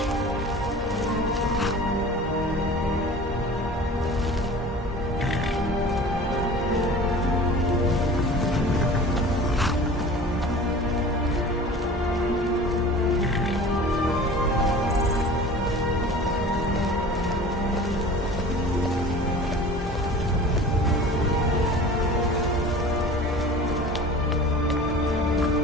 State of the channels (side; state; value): both; normal; correlation 0.40